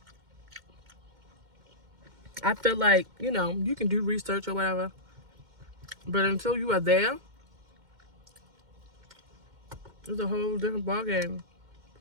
I feel like, you know, you can do research or whatever, but until you are there, it's a whole different ballgame.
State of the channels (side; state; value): left; late; 2.1 ms